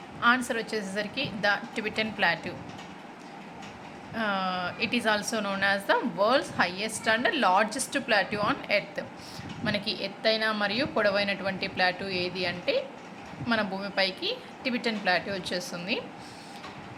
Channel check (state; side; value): identical; both; correlation 1.00